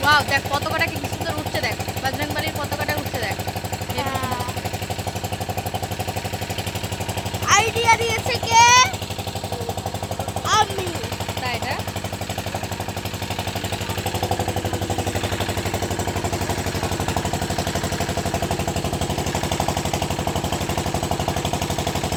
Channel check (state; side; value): identical; both; correlation 1.00